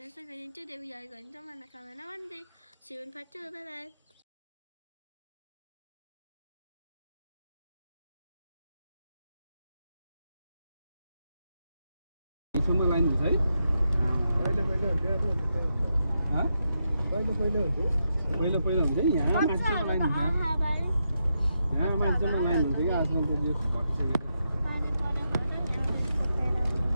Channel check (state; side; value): inverted; both; correlation -0.84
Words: Vanessa and today we are going to Manakawana one day. See you in part 2. Bye bye. यसमा लाइन हुन्छ है पहिले हुन्छ यहाँ मान्छेमा लाइन हुन्छ यहाँ मान्छेमा लाइन हुन्छ कि आजकल त यो घटिसकेको